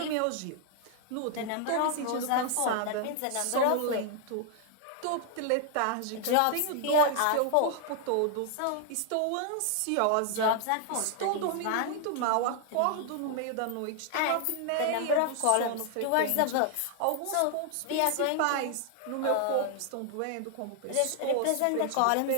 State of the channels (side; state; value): both; different; correlation 0.00